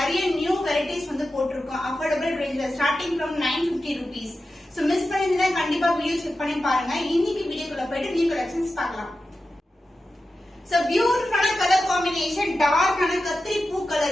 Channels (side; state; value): both; normal; correlation 0.92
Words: நியூ வெரைட்டிஸ் வந்து போட்டிருக்கோம். அஃபோர்டபிள் ரேஞ்ச்ல starting from 950 rupees. So miss பண்ணிருந்தா கண்டிப்பா வீடியோ செக் பண்ணி பாருங்க. இன்னைக்கு வீடியோக்குள்ள போயிட்டு நியூ கலெக்ஷன்ஸ் பார்க்கலாம். சோ பியூட்டிஃபுல்லான கலர் காம்பினேஷன், டார்க்கான கத்திரி பூ